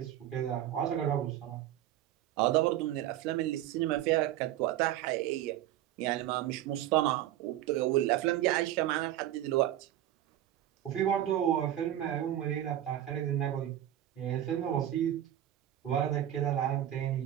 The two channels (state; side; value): quieter; left; 12.4 dB